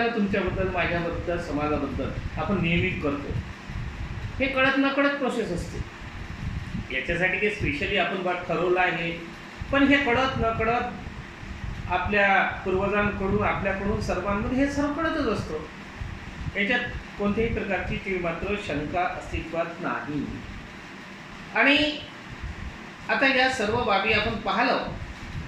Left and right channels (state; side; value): identical; both; correlation 1.00